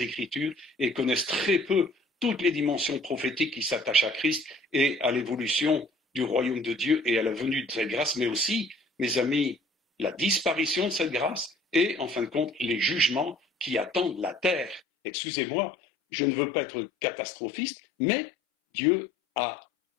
Écritures et connaissent très peu toutes les dimensions prophétiques qui s'attachent à Christ et à l'évolution du royaume de Dieu et à la venue de cette grâce, mais aussi, mes amis, la disparition de cette grâce et, en fin de compte, les jugements qui attendent la terre. Excusez-moi, je ne veux pas être catastrophiste, mais Dieu a,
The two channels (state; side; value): drops out; right; at 14.8 s